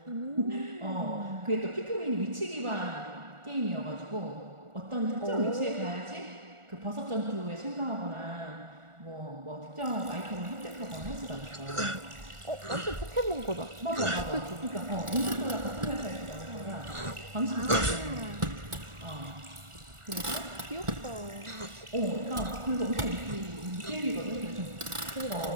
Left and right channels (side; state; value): left; late; 1.4 ms